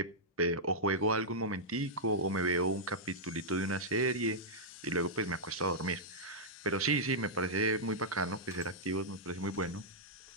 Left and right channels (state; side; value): normal; both; correlation -0.10